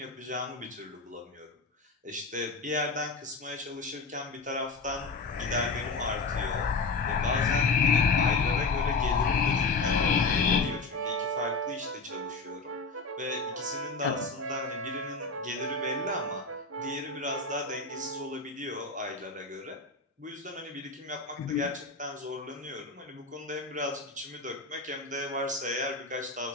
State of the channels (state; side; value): quieter; right; 3.8 dB